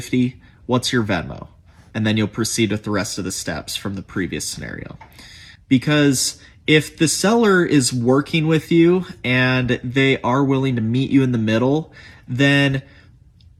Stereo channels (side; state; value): both; identical; correlation 1.00